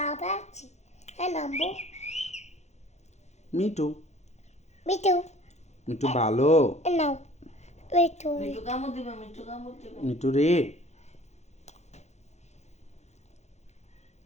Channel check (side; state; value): right; late; 0.32 ms